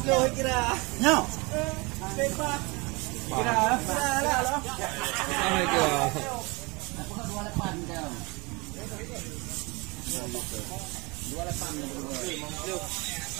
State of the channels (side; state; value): left; quieter; 26.6 dB